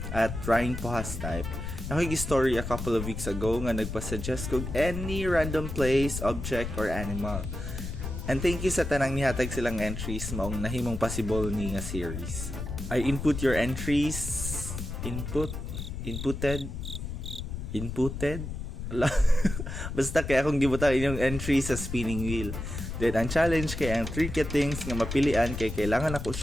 at Ryan Pohastype, nakikig-story a couple of weeks ago nga nagpasuggest kog any random place, object, or animal. And thank you sa tanang nihatag silang entries maong nahimong possible ni nga series. I input your entries. Inputted? Basta kaya akong gibutang inyong entries sa spinning wheel. Then ang challenge kay ang 3 things nga mapilian kay kailangan ako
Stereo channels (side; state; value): left; noise; rumble, 6 dB below the sound